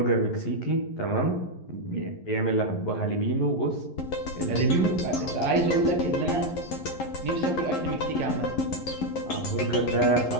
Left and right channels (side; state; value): right; late; 11 ms